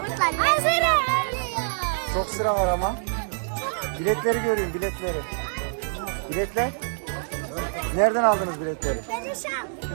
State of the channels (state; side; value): silent; left; digital silence